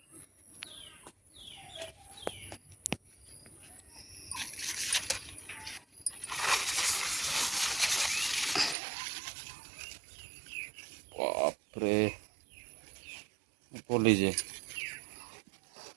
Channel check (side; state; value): left; drops out; at 8.8 s